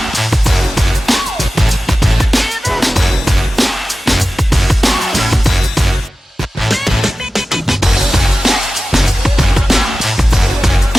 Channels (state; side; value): normal; both; correlation 0.94